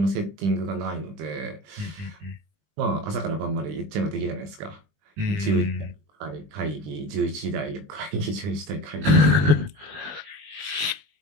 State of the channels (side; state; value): left; late; 20 ms